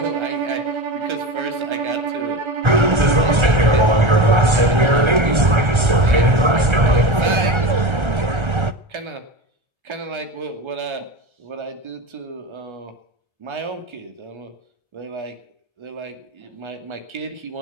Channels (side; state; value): left; late; 1.3 ms